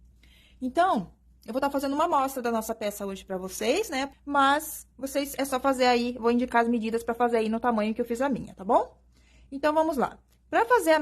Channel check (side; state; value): both; identical; correlation 1.00